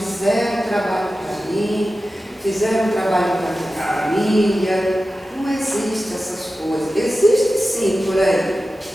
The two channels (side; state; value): both; normal; correlation 0.93